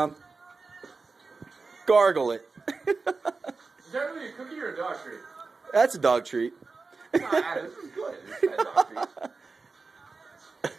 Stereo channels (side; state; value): left; quieter; 4.2 dB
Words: Gargle it. Is that really a cookie or a dog treat? That's a dog treat. Nah, this is good. It's a dog treat.